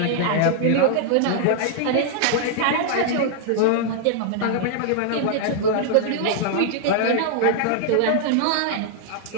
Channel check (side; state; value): both; different; correlation -0.01